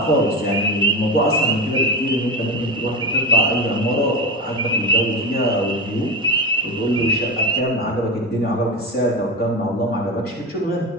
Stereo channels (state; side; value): normal; both; correlation 0.21